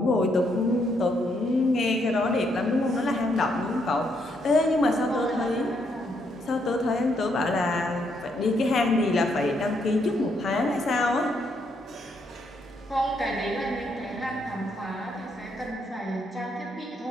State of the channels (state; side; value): normal; both; correlation 0.75